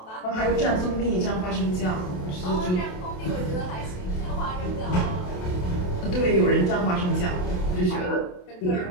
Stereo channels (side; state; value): right; late; 28 ms